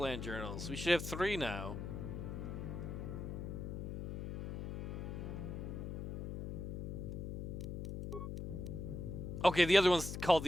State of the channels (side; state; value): left; noise; hum, 5 dB below the sound